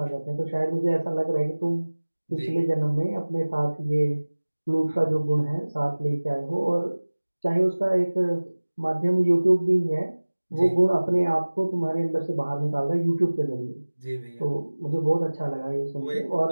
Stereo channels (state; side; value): inverted; both; correlation -1.00